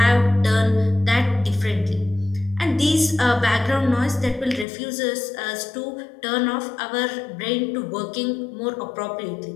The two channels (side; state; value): right; drops out; at 4.7 s